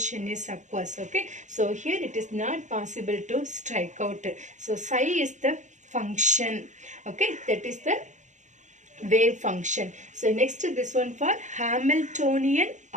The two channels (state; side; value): late; left; 0.35 ms